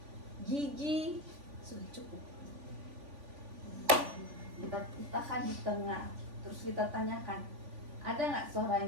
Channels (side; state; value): left; late; 3.5 ms